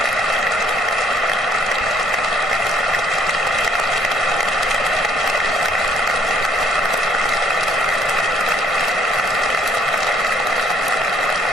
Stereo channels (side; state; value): both; normal; correlation 0.65